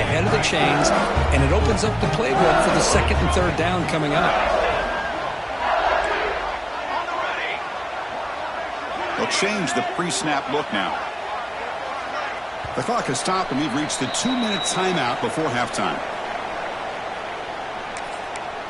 ahead of the chains, and it opens up the playbook for the second and third down coming up. They'll change the pre-snap look now. The clock has stopped, and we've reached the 2-minute timeout before halftime.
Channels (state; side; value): identical; both; correlation 1.00